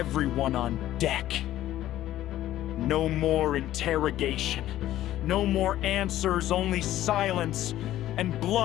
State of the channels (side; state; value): right; quieter; 13.6 dB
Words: on deck. No more interrogation, no more answers, only silence and